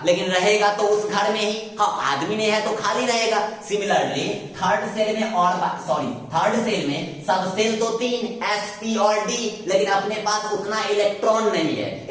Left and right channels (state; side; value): identical; both; correlation 1.00